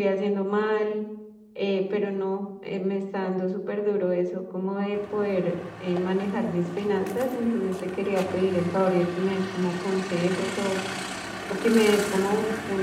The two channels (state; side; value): identical; both; correlation 1.00